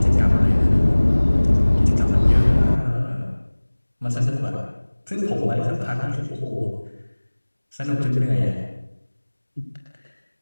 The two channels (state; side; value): inverted; both; correlation -1.00